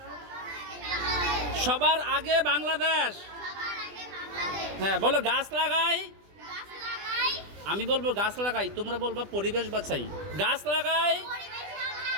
সবার আগে বাংলাদেশ। হ্যাঁ বলো, গাছ লাগাই। আমি বলবো গাছ লাগাই, তোমরা বলবো পরিবেশ বাঁচাই। গাছ লাগাই,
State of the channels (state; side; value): late; left; 20 ms